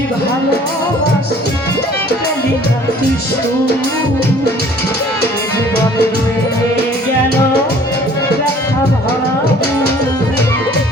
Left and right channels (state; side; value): normal; both; correlation 0.53